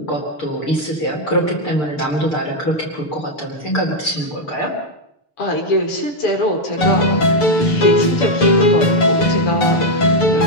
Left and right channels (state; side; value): late; right; 6.8 ms